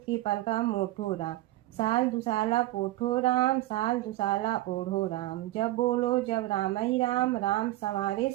पलका मोठो राम। साल दुसाला पोठो राम, साल दुसाला ओढ़ो राम। जब बोलो जब राम ही राम, राम संवारे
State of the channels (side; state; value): left; quieter; 16.9 dB